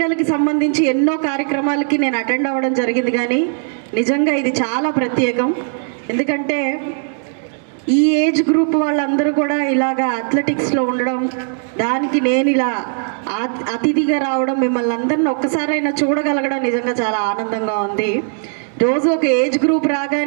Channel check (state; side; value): silent; left; 61 dB below the other